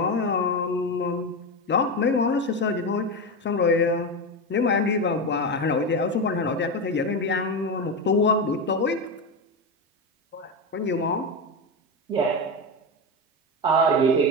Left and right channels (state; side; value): normal; both; correlation 0.15